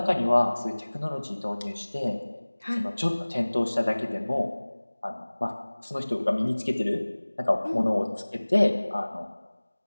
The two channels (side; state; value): both; inverted; correlation -1.00